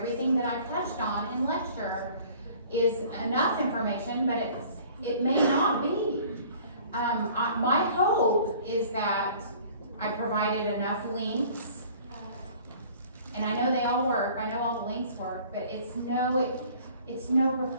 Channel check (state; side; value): inverted; both; correlation -0.51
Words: that I've touched on in lecture is enough information, but it may not be. My hope is that I provided enough links, and I know they all work, I know all the links work, but it's no